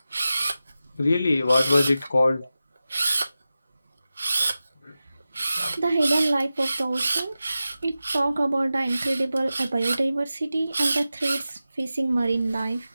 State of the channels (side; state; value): both; inverted; correlation -0.94